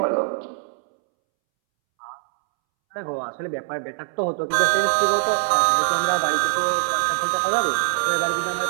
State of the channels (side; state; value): left; silent; 64 dB below the other